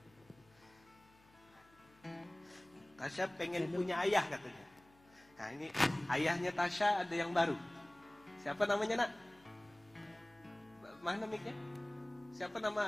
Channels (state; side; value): noise; left; hum, 28 dB below the sound